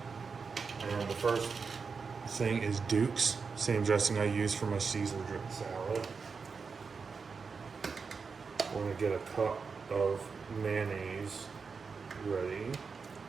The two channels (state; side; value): quieter; left; 5.2 dB